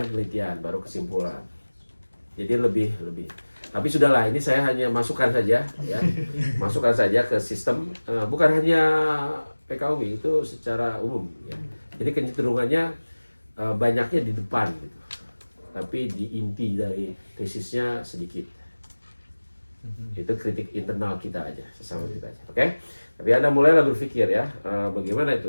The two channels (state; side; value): inverted; both; correlation -1.00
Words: penelitian baru kesimpulan. Jadi lebih. Tapi sudahlah, ini saya hanya masukkan saja ya. Masukkan saja ke sistem, bukan hanya PKUMI, itu secara umum ya. Jadi kecenderungannya banyaknya di depan gitu. Tapi di inti dari tesisnya sedikit. Itu kritik internal kita aja, sesama kita aja. Oke? Tapi Anda mulailah berpikir ya, bagaimana itu